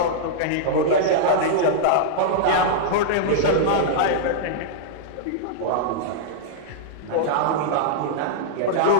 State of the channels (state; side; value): different; both; correlation -0.02